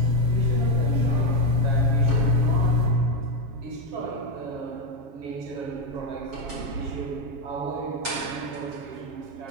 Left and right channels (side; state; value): left; late; 7.3 ms